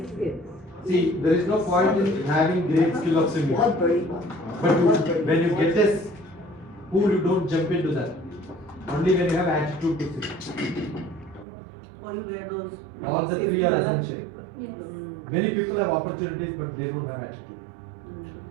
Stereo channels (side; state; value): left; drops out; at 11.5 s